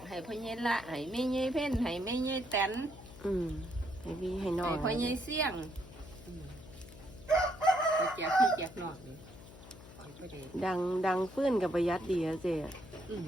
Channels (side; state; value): left; noise; hum, 17 dB below the sound